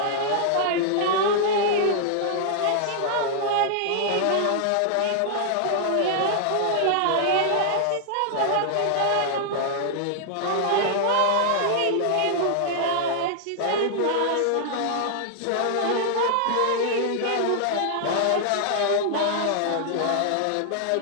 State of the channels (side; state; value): both; different; correlation -0.01